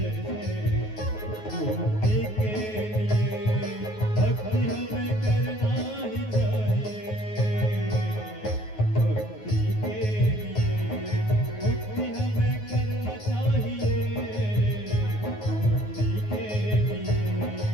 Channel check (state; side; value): late; right; 9.4 ms